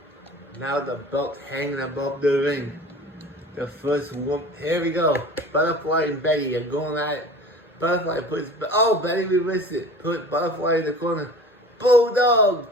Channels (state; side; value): normal; both; correlation 0.40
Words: now the belt hanging above the ring. The first one. Here we go. Butterfly and Betty are going at it. Butterfly puts. Oh, Betty reversed it. Put Butterfly in the corner.